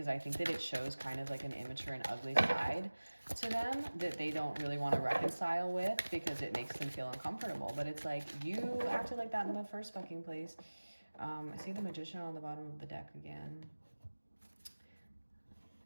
I think that it shows kind of like an immature and ugly side to them that they don't really want to reconcile with, because it makes them feel uncomfortable. But it's like, you acted like that in the first fucking place. I see the Magician on the bottom of the deck again.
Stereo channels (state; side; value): inverted; both; correlation -1.00